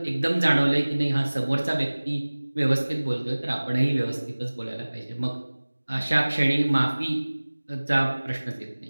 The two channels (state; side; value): inverted; both; correlation -1.00